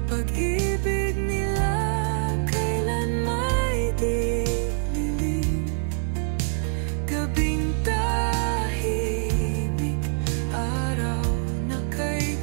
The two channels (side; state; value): left; silent; digital silence